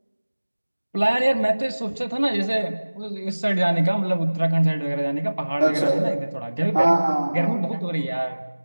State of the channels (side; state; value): both; inverted; correlation -1.00